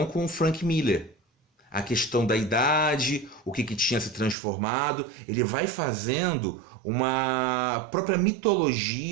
com o Frank Miller. A questão da idade, o que tinha se transformado, ele vai fazendo uma própria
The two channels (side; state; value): left; drops out; at 4.4 s